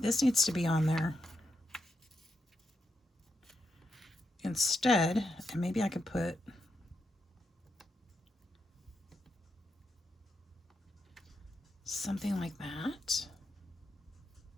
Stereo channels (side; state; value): both; normal; correlation 0.82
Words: needs to be on there instead. And maybe I could put something like that.